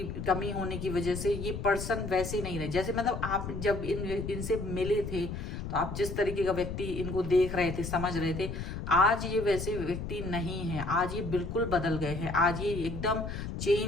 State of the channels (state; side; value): noise; left; rumble, 6 dB below the sound